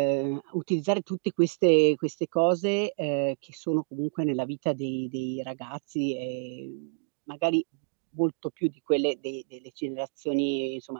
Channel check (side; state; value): left; silent; digital silence